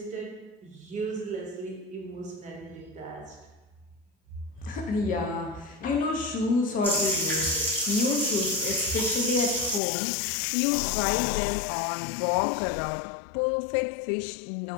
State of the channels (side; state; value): right; drops out; at 9.8 s